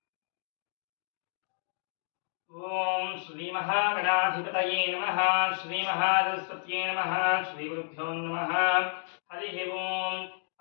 ఓం శ్రీ మహాగణాధిపతయే నమః శ్రీ మహాసరస్వత్యే నమః శ్రీ గురుభ్యో నమః. హరి ఓం.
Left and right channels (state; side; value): silent; right; digital silence